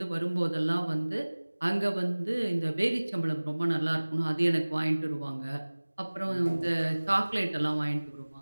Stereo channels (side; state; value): both; inverted; correlation -1.00